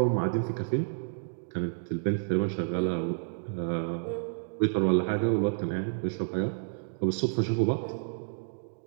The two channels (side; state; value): left; silent; digital silence